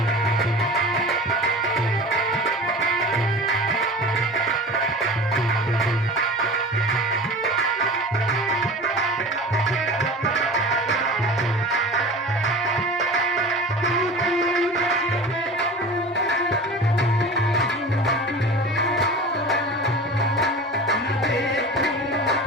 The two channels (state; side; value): normal; both; correlation 0.35